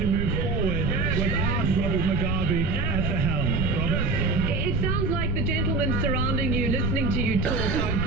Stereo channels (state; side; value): noise; right; rumble, 2 dB below the sound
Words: move forward without Robert Mugabe at the helm. Robert? It sounds like the gentlemen surrounding you, listening to you talk, are